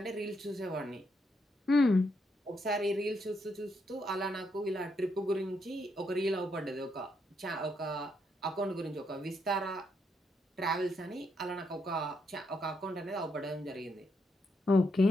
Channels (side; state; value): both; normal; correlation 0.78